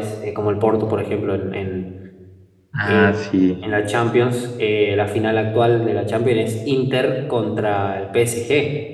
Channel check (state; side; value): identical; both; correlation 1.00